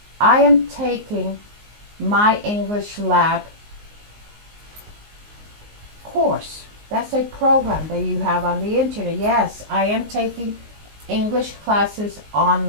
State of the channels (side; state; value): left; late; 19 ms